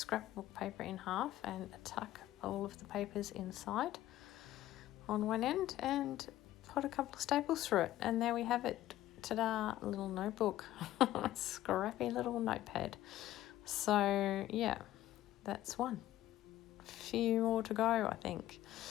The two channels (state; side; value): quieter; right; 14.3 dB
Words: paper in half and tuck all of the papers inside on one end and put a couple of staples through it, and there we have it. Ta-da, a little notebook. Scrappy little notepad. So yeah, that's one. Few more to go, I think.